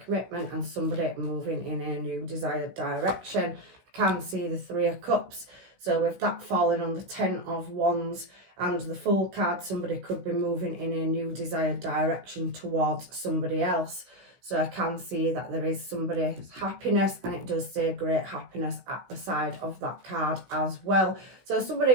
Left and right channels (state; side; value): late; left; 16 ms